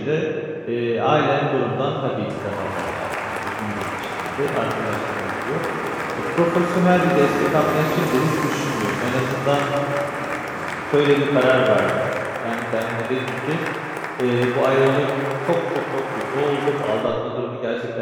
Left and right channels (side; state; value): both; identical; correlation 1.00